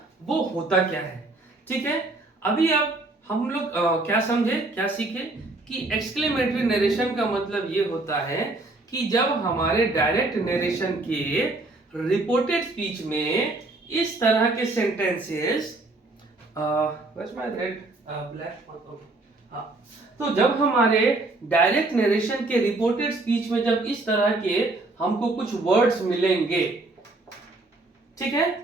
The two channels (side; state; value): left; quieter; 3.0 dB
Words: वो होता क्या है। ठीक है, अभी अब हम लोग क्या समझे, क्या सीखे कि एक्सक्लेमेटरी नरेशन का मतलब ये होता है कि जब हमारे डायरेक्ट नरेशन के रिपोर्टेड स्पीच में इस तरह के सेंटेंसेस, तो जब हमारे डायरेक्ट नरेशन के रिपोर्टेड स्पीच में जब इस तरह के हमको कुछ वर्ड्स मिलेंगे, ठीक है,